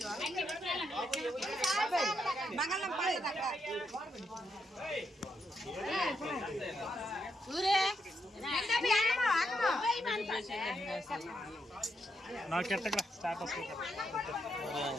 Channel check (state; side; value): normal; both; correlation 0.80